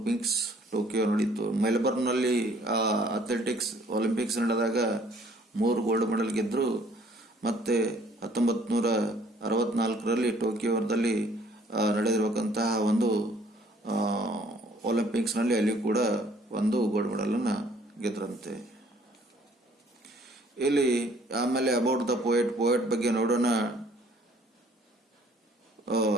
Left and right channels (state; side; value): normal; both; correlation 0.59